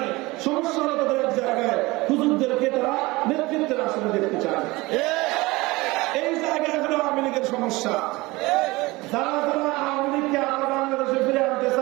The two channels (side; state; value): left; quieter; 21.8 dB